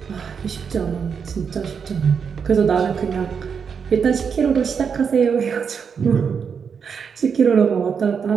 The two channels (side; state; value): left; quieter; 6.5 dB